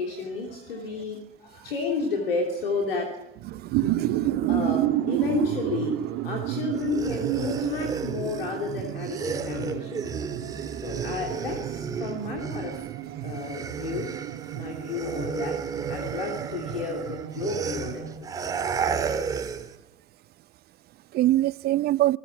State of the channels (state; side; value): quieter; left; 4.3 dB